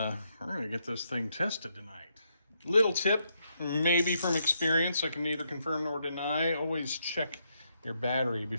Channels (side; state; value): both; inverted; correlation -0.78